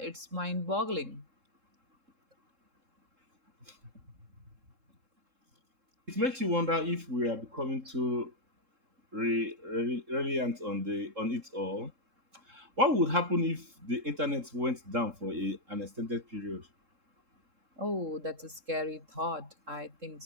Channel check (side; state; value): left; late; 3.7 ms